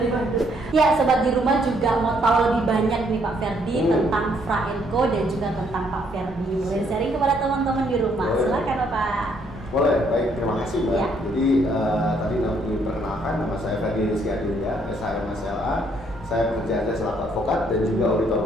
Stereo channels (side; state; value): both; normal; correlation 0.69